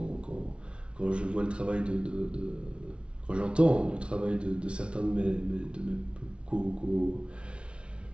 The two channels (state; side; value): late; left; 0.058 ms